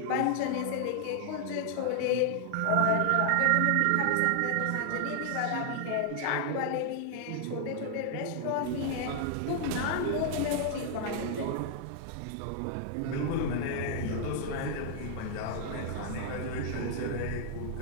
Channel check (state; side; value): different; both; correlation 0.00